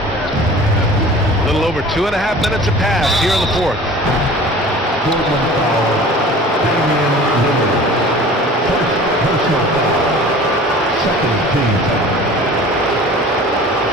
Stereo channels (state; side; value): normal; both; correlation 0.43